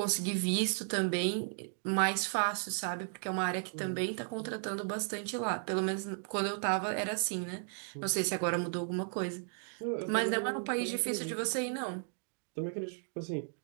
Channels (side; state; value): left; silent; 55 dB below the other